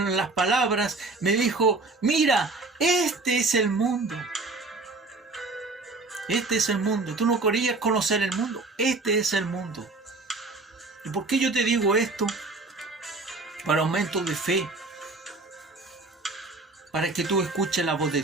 las palabras, me dijo, mira, este es el mundo. Este es el mundo. Tú no querías conocer el mundo. Este es el mundo. ¿Y por qué yo te digo esto? Para aumento de fe. Para que tú escuches la voz de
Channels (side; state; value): left; quieter; 3.4 dB